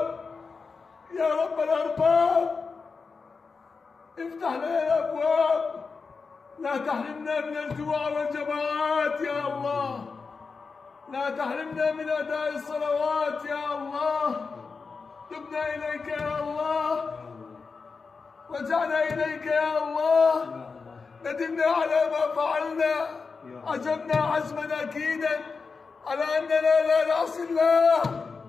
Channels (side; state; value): right; quieter; 4.8 dB